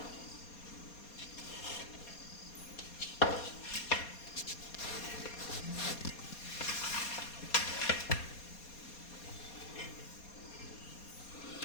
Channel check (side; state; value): right; late; 4.2 ms